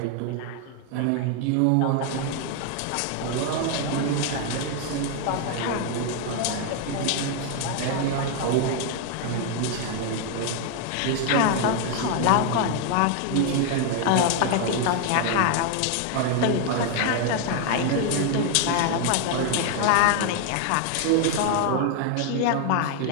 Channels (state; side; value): different; both; correlation 0.00